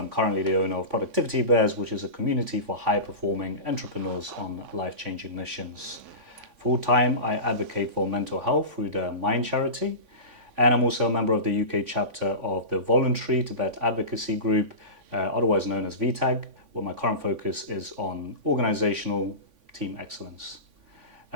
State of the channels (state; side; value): late; left; 3.5 ms